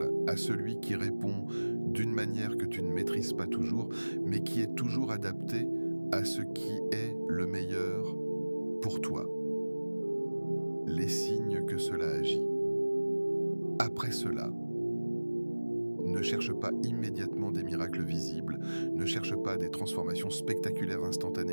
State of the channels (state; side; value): inverted; both; correlation -1.00